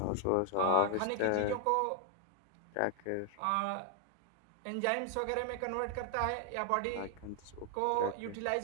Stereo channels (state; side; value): different; both; correlation 0.00